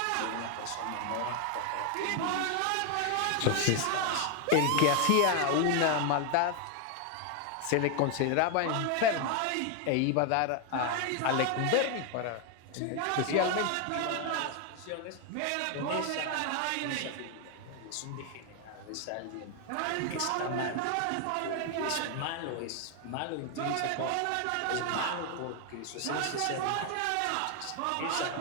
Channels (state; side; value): different; both; correlation 0.01